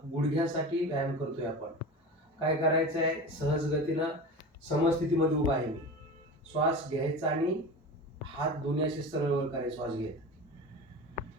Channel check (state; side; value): normal; both; correlation 0.30